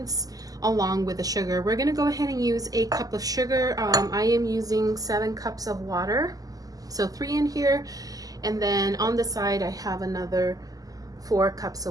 along with the sugar. We're going to go ahead and use 1 cup of sugar. I am using 7 cups of water, so 3 in here, and then on the side I have another 4 cups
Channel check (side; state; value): left; late; 0.17 ms